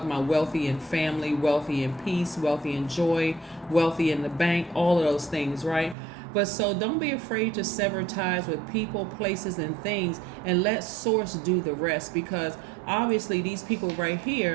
about wealthy in family, wealthy in peace, wealthy in joy, wealthy in the bank, all of those things, right? But so don't be afraid to sever ties with people, places, and things, and let source do the rest, because obviously these people right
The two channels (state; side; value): drops out; left; at 6.0 s